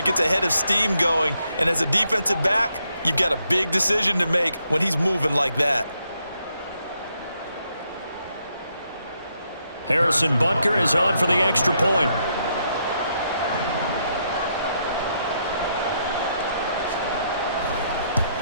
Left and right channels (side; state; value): both; inverted; correlation -0.77